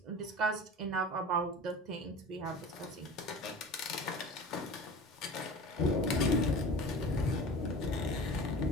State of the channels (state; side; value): normal; both; correlation 0.36